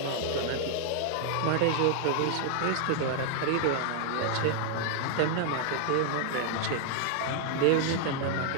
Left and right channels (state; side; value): different; both; correlation -0.01